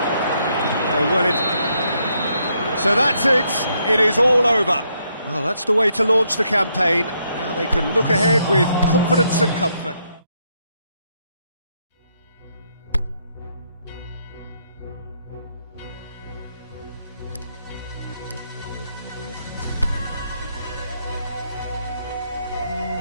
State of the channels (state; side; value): inverted; both; correlation -0.75